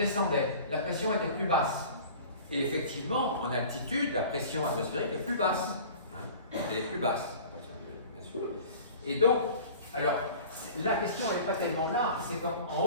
la pression était plus basse. Et effectivement, en altitude, la pression atmosphérique est plus basse. Hein, elle est plus basse, bien sûr. Et donc, alors, la question n'est pas tellement là, c'est en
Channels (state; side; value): inverted; both; correlation -0.42